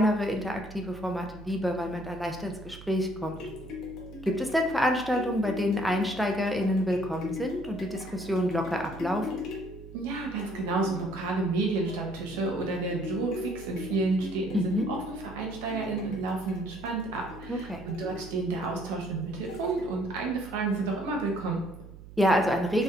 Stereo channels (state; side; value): noise; right; hum, 16 dB below the sound